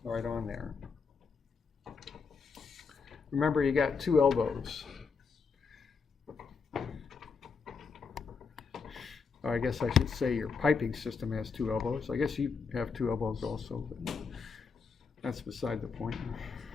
right on there. Remember, you got two elbows. Or I guess I should say your piping system has two elbows. I guess you have two elbows also, but that's beside the point.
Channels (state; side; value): quieter; right; 5.3 dB